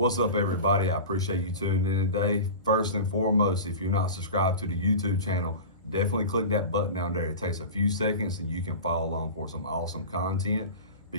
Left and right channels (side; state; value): both; inverted; correlation -0.31